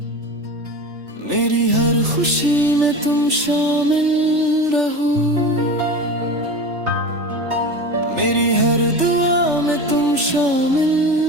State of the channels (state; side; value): late; left; 3.4 ms